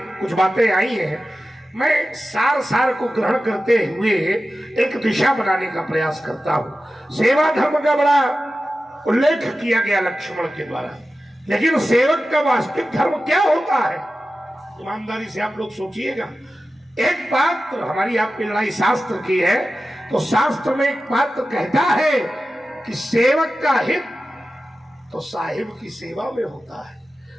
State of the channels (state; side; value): normal; both; correlation 0.94